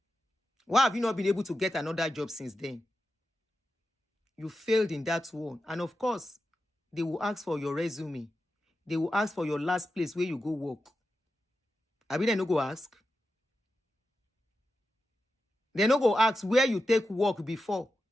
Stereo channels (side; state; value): both; normal; correlation 0.90